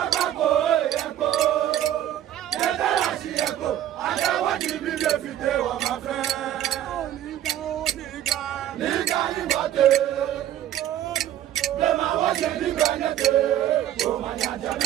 ẹyẹkọ yẹtara ṣiyẹkọ adáwọjì mi lè fìdé wọn máa fẹ. Nígbà nígbà tẹ. Lema wọ́ṣẹ̀ nígbà nẹ́tẹ̀. Òmànyàjà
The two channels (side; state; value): left; quieter; 11.9 dB